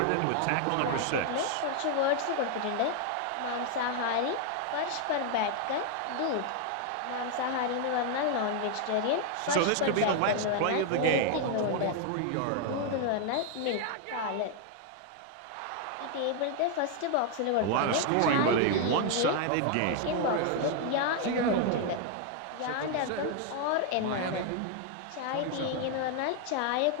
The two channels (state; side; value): different; both; correlation 0.00